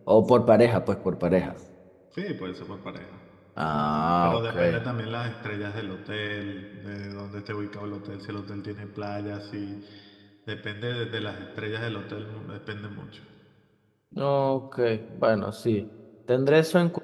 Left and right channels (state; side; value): identical; both; correlation 1.00